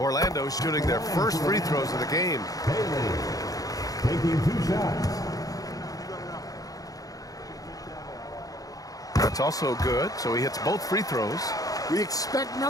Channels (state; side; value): late; right; 0.17 ms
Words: shooting their first free throws of the game. Bailey taking 2 shots. That's also good, so he hits both free throws. We expect